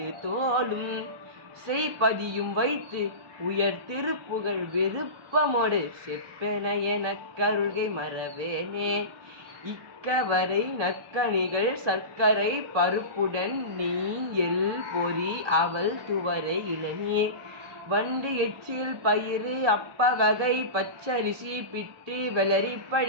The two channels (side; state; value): left; late; 1.2 ms